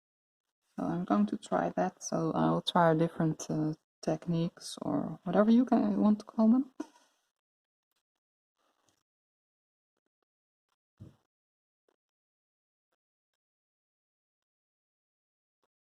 So I'm going to try that. So I'll try different techniques or whatever you want to call them.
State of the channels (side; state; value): both; identical; correlation 1.00